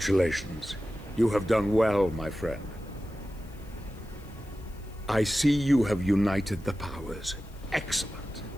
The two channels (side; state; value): left; noise; hiss, 27 dB below the sound